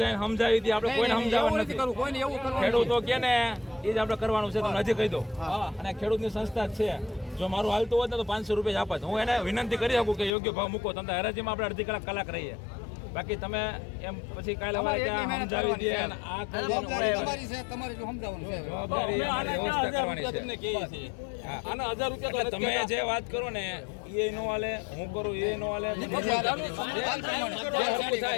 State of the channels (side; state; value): right; drops out; at 10.3 s